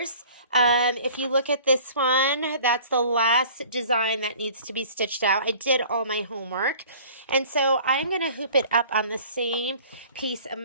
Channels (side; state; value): both; inverted; correlation -0.48